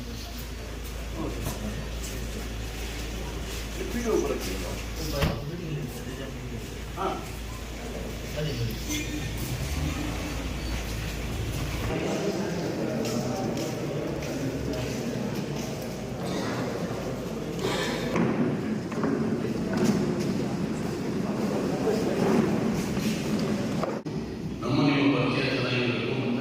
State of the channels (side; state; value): both; identical; correlation 1.00